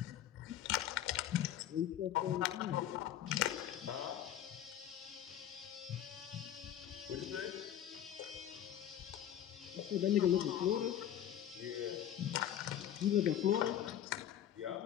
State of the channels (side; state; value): right; quieter; 11.0 dB